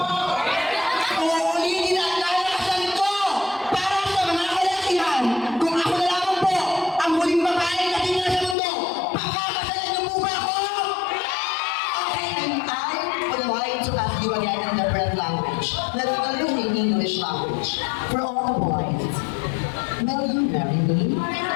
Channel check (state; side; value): drops out; right; at 8.6 s